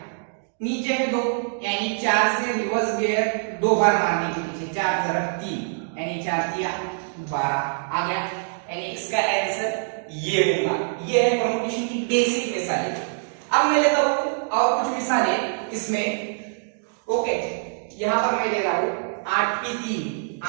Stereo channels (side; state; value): left; silent; digital silence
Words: नीचे है 2, यानी 4 से रिवर्स गियर 2 बार मारने के पीछे, 4 जरब 3, यानी 4 दिया 12 आ गया, यानी इसका आंसर ये होगा। ये है परमुटेशन की बेसिक मिसालें। अब मैं लेता हूं और कुछ मिसालें इसमें। ओके, यहां पर मैं ले रहा हूं